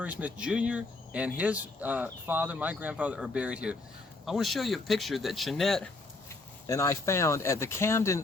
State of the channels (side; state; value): right; quieter; 3.2 dB